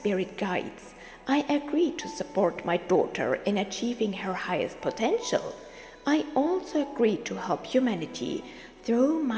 guides, I agreed to support my daughter in achieving her highest potential. I also agreed to help humanity through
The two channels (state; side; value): identical; both; correlation 1.00